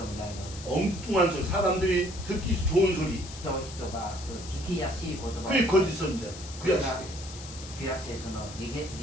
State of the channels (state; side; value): noise; left; hiss, 14 dB below the sound